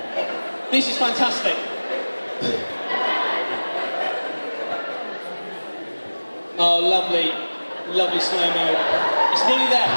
This is fantastic. Oh, lovely. Lovely slow-mo. It's nearly there.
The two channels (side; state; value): both; inverted; correlation -1.00